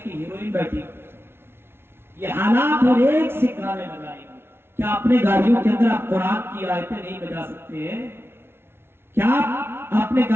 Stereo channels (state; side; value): late; left; 0.12 ms